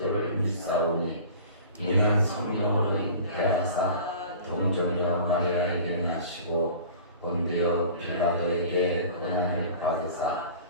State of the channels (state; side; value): inverted; both; correlation -0.42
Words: 믿사오니 이는 성령으로 잉태하사 동정녀 마리아에게 나시고 본디오 빌라도에게 고난을 받으사